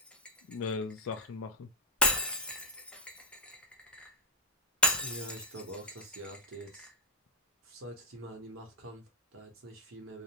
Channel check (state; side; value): normal; both; correlation -0.08